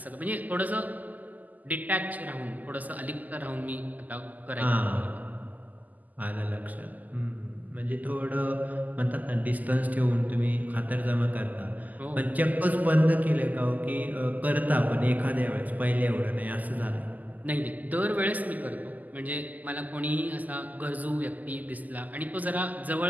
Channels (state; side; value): late; left; 0.081 ms